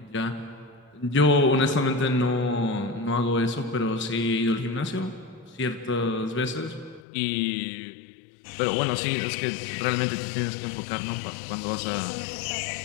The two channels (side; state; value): right; drops out; at 7.0 s